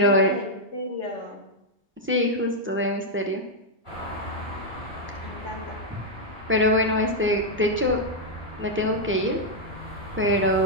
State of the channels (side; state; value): both; normal; correlation -0.02